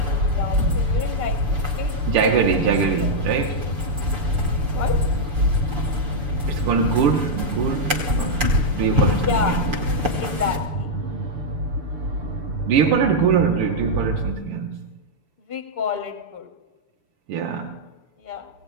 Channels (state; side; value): late; left; 6.8 ms